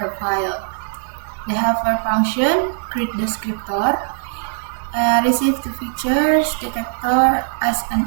a file. The helper function create descriptor receive the features detector as an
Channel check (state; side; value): silent; left; 66 dB below the other